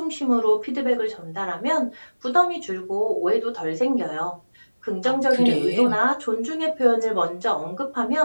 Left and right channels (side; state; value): both; inverted; correlation -1.00